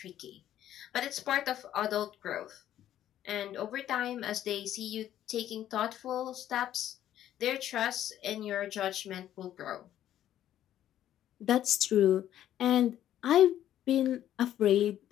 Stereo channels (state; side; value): quieter; right; 11.7 dB